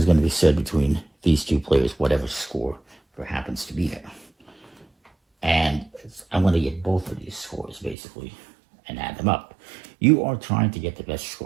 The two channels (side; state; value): left; drops out; at 8.0 s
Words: going to be shared between these 2 players, whatever score there happens to be there. And I'm going to get both of these scores, basically, and add them up. You are trying to get the best